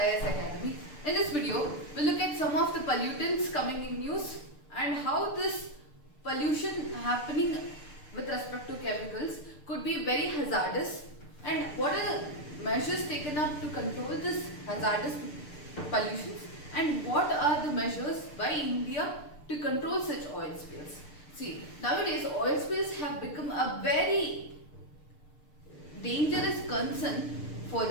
Academy. In this video, we'll look at some of the pollutants coming in news and how this pollution happening with respect to chemicals could be very hazardous, and what are the measures taken up to control this hazardous pollutions, and what are the measures by India to control such oil spills. See, nowadays oil spills have become a very dangerous concern for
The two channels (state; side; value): late; right; 6.7 ms